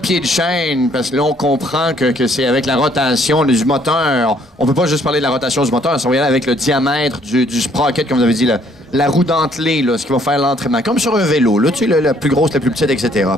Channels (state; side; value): normal; both; correlation 0.64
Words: de chaîne, parce que là, on comprend que c'est avec la rotation du moteur. On peut pas juste parler de la rotation du moteur, ça va y aller avec le diamètre du sprocket, comme vous avez dit, la roue dentelée, là, ce qui va faire l'entraînement. Comme sur un vélo, là, tu sais, la plus grosse, la plus petite, etc.